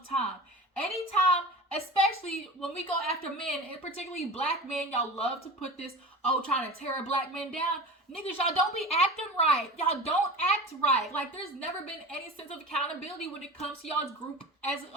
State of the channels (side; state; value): both; normal; correlation 0.33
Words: time. Anytime, especially when we go after men, and particularly black men, y'all love to put this, trying to tear a black man down. Niggas, y'all don't be acting right. Y'all don't act right. Like, there's never been any sense of accountability when it comes to y'all's group as a